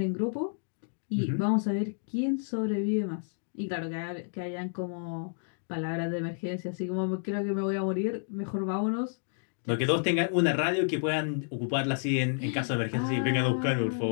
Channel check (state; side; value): silent; right; digital silence